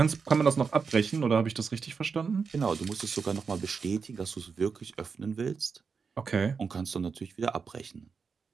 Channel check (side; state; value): left; quieter; 5.5 dB